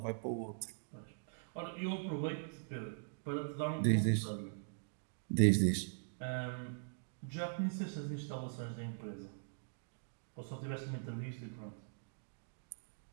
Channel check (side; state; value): left; silent; digital silence